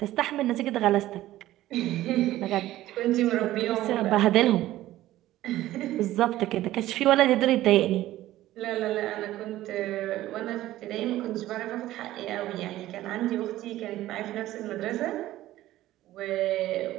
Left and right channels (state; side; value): quieter; left; 15.0 dB